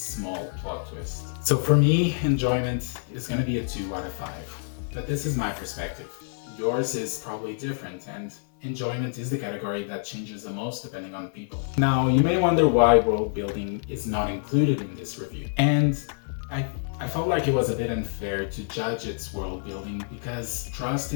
plot twist. So for me, enjoyment is going to be a 2 out of 5. But this is my perspective. Yours is probably different, and enjoyment is the category that changes the most depending on people. Now, you may wonder why world building is not included in this review. And I felt like it was a bit unfair to judge its world building because Trust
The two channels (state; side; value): silent; right; 59 dB below the other